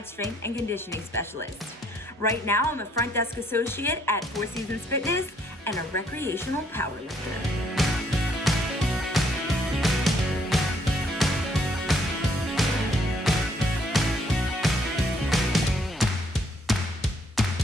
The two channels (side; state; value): both; normal; correlation 0.67